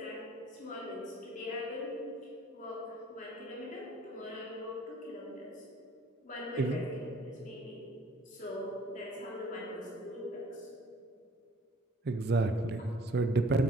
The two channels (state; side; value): normal; both; correlation 0.56